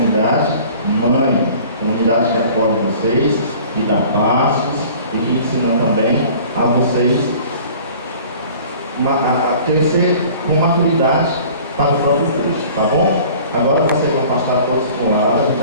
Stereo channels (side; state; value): both; inverted; correlation -0.47